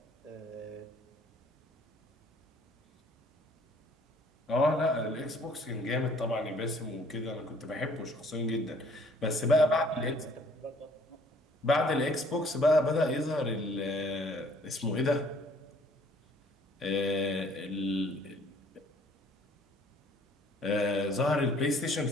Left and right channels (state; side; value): normal; both; correlation 0.58